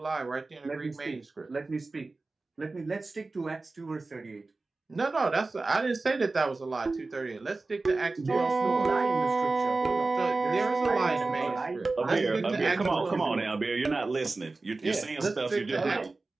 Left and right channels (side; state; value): left; quieter; 3.5 dB